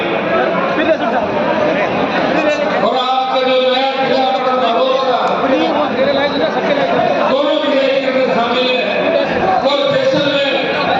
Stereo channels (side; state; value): both; identical; correlation 1.00